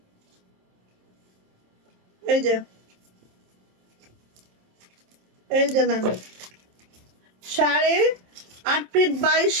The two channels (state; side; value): late; left; 27 ms